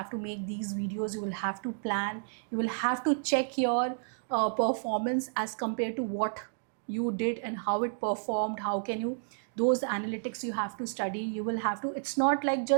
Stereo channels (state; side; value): silent; left; digital silence